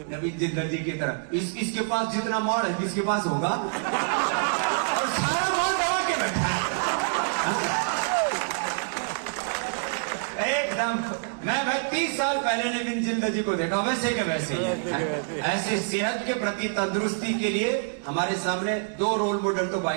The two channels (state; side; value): silent; left; digital silence